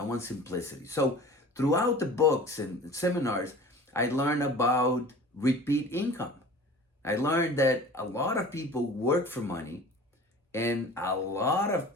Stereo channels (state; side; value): normal; both; correlation 0.41